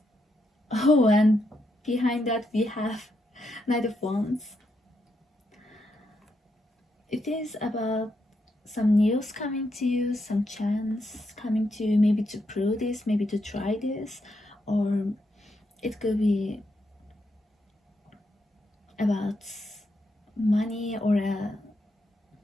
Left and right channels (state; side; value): normal; both; correlation 0.81